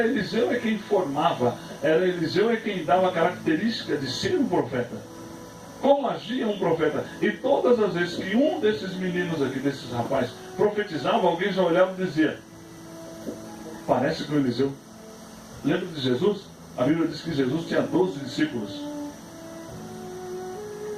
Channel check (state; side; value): identical; both; correlation 1.00